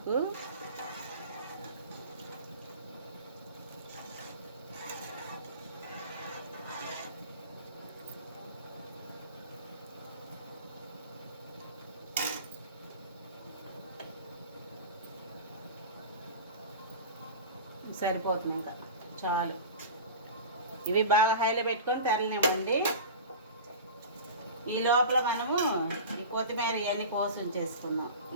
సరిపోతుంది, ఇంకా చాలు. ఇవి బాగా హైలో పెట్టుకొని తెరలేమండి. ఈ లోపల మనము ఈ కొత్తిమీర ఇవన్నీ కోసి ఉంచేసుకుందాం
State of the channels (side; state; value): both; inverted; correlation -0.33